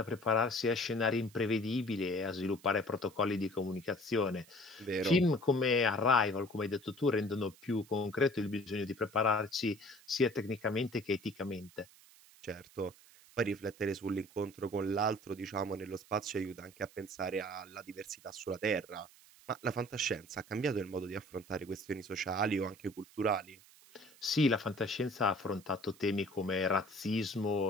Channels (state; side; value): noise; right; hiss, 24 dB below the sound